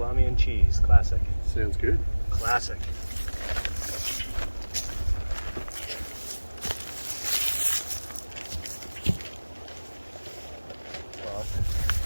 and cheese. Classic. Sounds good. Classic.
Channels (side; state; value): both; inverted; correlation -1.00